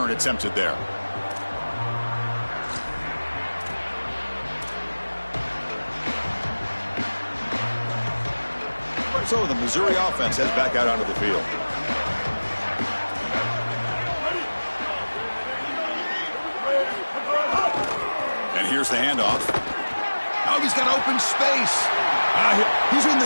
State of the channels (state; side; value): inverted; both; correlation -1.00